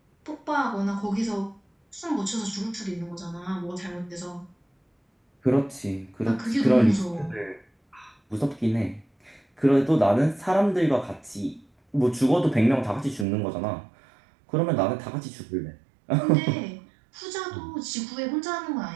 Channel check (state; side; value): drops out; left; at 13.2 s